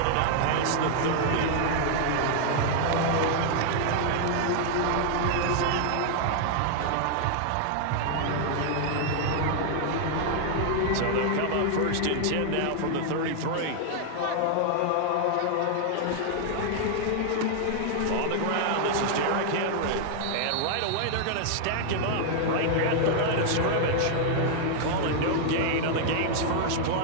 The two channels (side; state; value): both; different; correlation 0.00